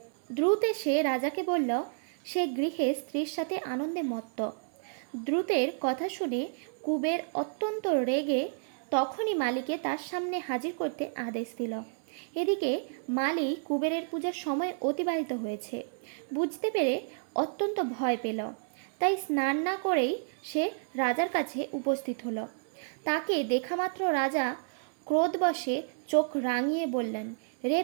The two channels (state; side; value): silent; left; 57 dB below the other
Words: দ্রুত এসে রাজাকে বলল, সে গৃহে স্ত্রীর সাথে আনন্দে মত্ত। দ্রুতের কথা শুনে কুবের অত্যন্ত রেগে তখনই মালিকে তার সামনে হাজির করতে আদেশ দিল। এদিকে মালি কুবেরের পূজার সময় অতিবাহিত হয়েছে বুঝতে পেরে অত্যন্ত ভয় পেল। তাই স্নান না করেই সে রাজার কাছে উপস্থিত হলো। তাকে দেখামাত্র রাজা ক্রোধবশে চোখ রাঙিয়ে বললেন, রে